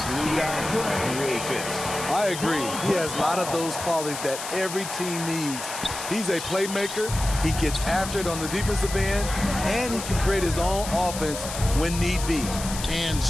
guy really fits. I agree. He has a lot of those qualities that every team needs. He's a playmaker. He gets after it on the defensive end, and he can create his own offense when need be. And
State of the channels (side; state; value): left; noise; hiss, 8 dB below the sound